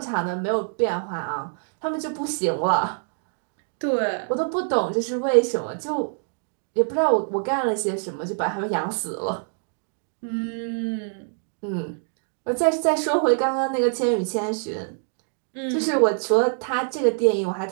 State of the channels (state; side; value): silent; left; digital silence